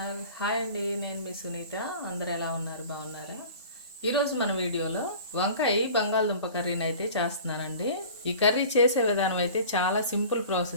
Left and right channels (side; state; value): both; inverted; correlation -0.42